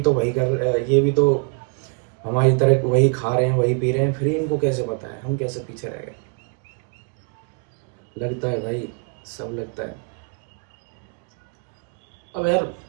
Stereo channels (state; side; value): quieter; left; 35.4 dB